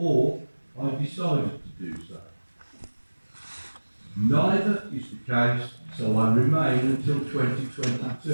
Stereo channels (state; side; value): inverted; both; correlation -1.00